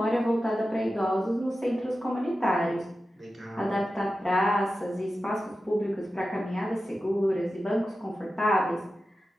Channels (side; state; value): both; normal; correlation 0.93